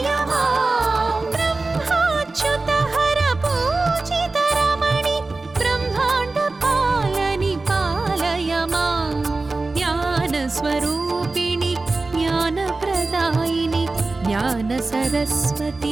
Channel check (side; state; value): left; quieter; 3.4 dB